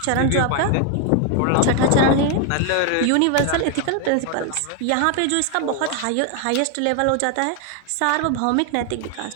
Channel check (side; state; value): both; different; correlation 0.01